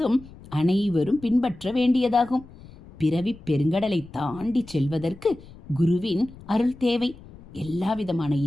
அனைவரும் பின்பற்ற வேண்டியதாகும். பிறவி பெருங்கடலை தாண்டி செல்வதற்கு குருவின் அருள் தேவை. எல்லாவிதமான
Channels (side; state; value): left; noise; rumble, 20 dB below the sound